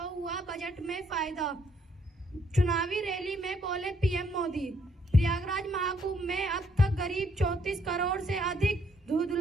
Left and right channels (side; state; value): both; normal; correlation 0.70